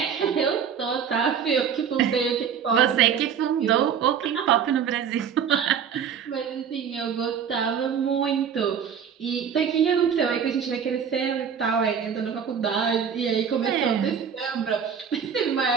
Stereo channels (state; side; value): quieter; left; 7.6 dB